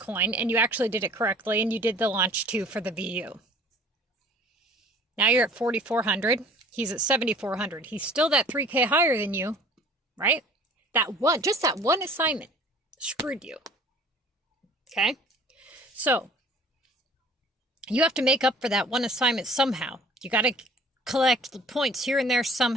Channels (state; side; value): normal; both; correlation 0.50